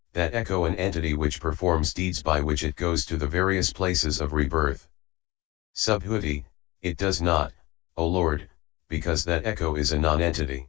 that echo an entity which performs deeds by which it goes to the various places of rebirth? Subhuti, it does not, O Lord, because that echo is a non-entity.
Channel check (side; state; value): right; quieter; 21.2 dB